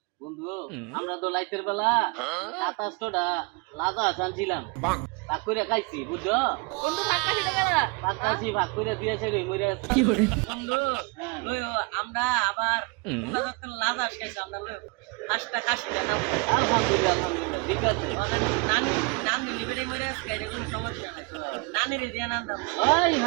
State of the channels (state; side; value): quieter; left; 28.8 dB